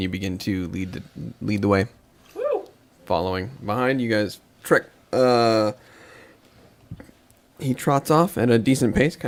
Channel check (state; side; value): identical; both; correlation 1.00